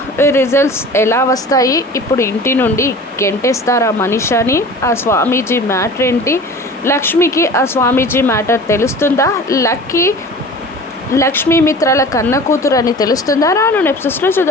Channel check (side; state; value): both; normal; correlation 0.40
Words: రిజల్ట్స్ ఎలా వస్తాయి, ఇప్పుడు ఇంటి నుండి గెంటేస్తారా మనీషాని, ఆ స్వామీజీ మ్యాటర్ ఏంటి, లక్ష్మికి ఆ స్వామీజీ మ్యాటర్ తెలుస్తుందా, లక్ష్మీ మిత్రాల కన్న కూతురు అని తెలుస్తుందా, రాను ఎపిసోడ్స్లో